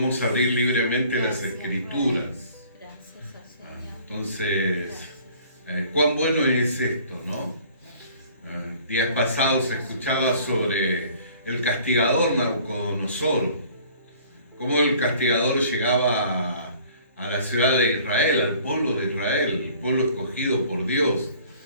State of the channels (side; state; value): both; inverted; correlation -0.53